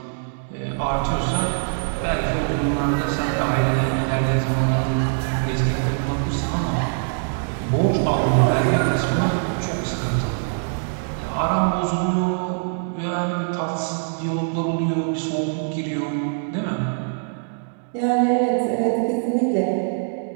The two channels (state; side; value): silent; left; digital silence